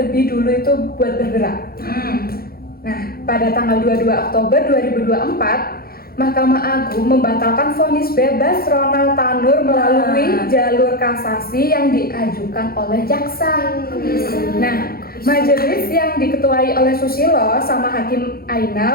dulu itu buat bergerak. Nah, pada tanggal 22 Oktober 2024, Mahkamah Agung membatalkan vonis bebas Ronald Tanur melalui jalur kasasi yang diajukan oleh jaksa. Nah, majelis yang diketuai oleh Susilo sama Hakim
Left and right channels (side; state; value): right; late; 0.44 ms